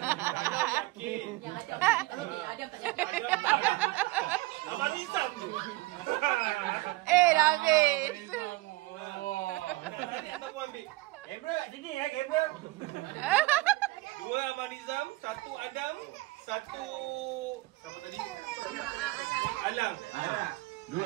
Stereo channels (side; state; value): left; quieter; 20.8 dB